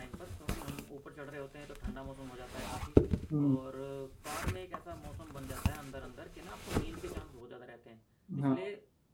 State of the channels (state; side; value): identical; both; correlation 1.00